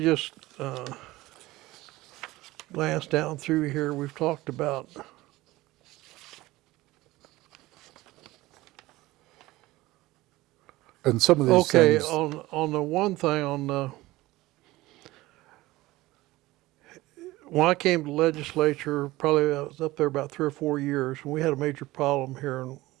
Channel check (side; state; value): left; quieter; 18.7 dB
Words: glance down through here. We've talked about And some of these things. on the one thing on the when I came to the legislature, probably I was up there about 3 or 4 years, and we had a major problem here in